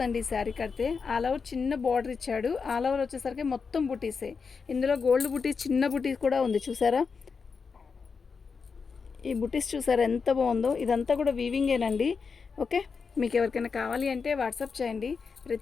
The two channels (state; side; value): quieter; right; 5.3 dB